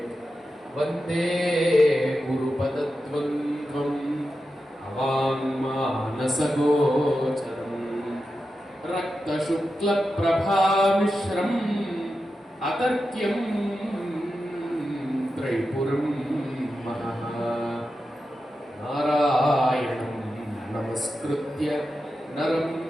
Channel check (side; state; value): both; normal; correlation 0.90